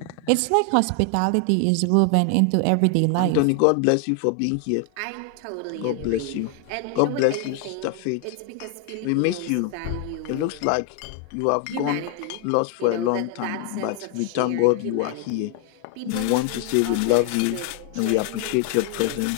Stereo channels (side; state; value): both; different; correlation 0.00